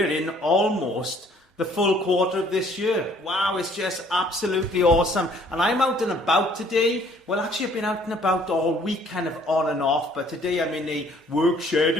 in almost the full quarter of this year. Wow, it's just absolutely awesome. And I'm out and about today. Well, actually, I've been out and about all week, kind of on and off. But today I'm in a work shared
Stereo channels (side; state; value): both; normal; correlation 0.59